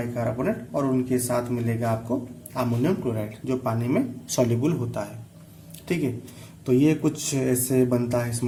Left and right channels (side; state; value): both; identical; correlation 1.00